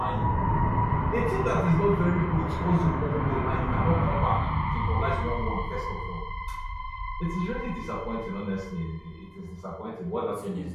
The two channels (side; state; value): both; identical; correlation 1.00